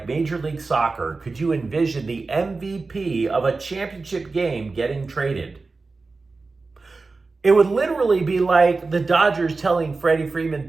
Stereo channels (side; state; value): left; quieter; 3.9 dB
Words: Major League Soccer could you envision the MVP of a championship game getting traded. It would literally be like the Dodgers telling Freddie